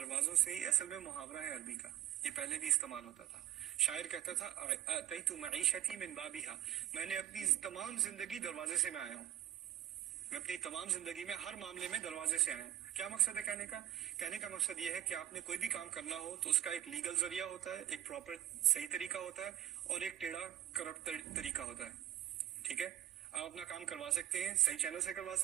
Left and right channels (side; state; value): left; quieter; 12.0 dB